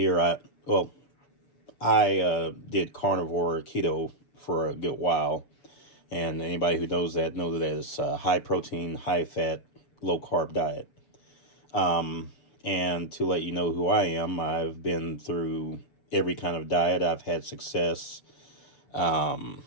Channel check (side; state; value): right; late; 7.2 ms